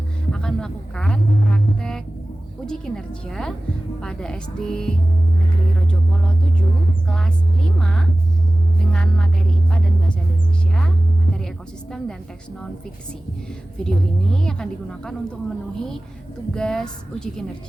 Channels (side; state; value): both; normal; correlation 0.97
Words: akan melakukan praktek uji kinerja pada SD Negeri Rojopolo 7 kelas 5 dengan materi IPA dan Bahasa Indonesia, materi ekosistem dan teks non-fiksi. Video ini akan digunakan untuk memenuhi tugas uji